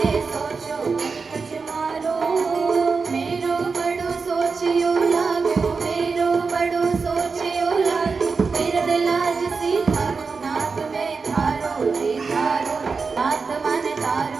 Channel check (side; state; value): left; quieter; 4.8 dB